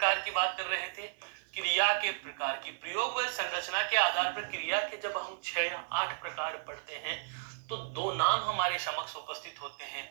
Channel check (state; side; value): silent; left; 55 dB below the other